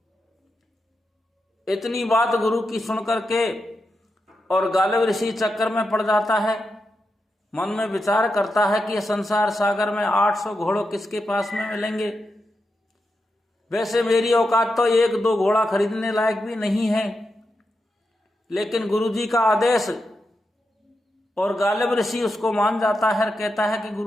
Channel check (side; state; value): both; normal; correlation 0.87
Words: इतनी बात गुरु की सुनकर के और गालिब ऋषि चक्कर में पड़ जाता है। मन में विचार करता है कि संसार सागर में 800 घोड़ों किसके पास में मिलेंगे। वैसे मेरी औकात तो 1-2 घोड़ा खरीदने लायक भी नहीं है, लेकिन गुरुजी का आदेश, और गालिब ऋषि उसको मान जाता है। कहता है कि